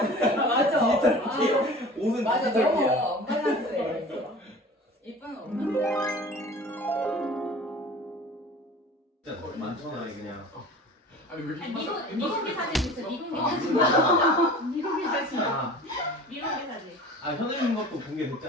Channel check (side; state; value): both; normal; correlation 0.41